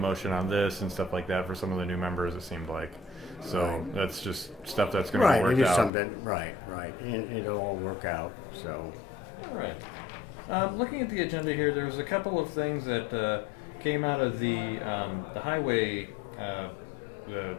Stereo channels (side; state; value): right; drops out; at 5.9 s